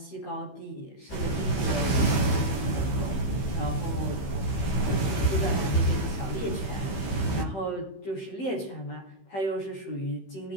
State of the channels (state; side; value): late; right; 15 ms